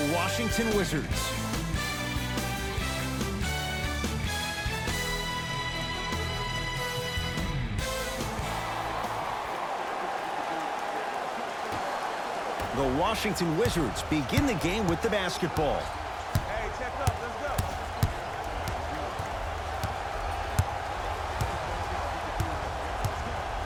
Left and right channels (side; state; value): both; identical; correlation 1.00